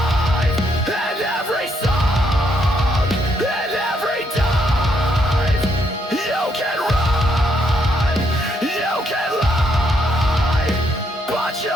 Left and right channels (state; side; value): normal; both; correlation 0.74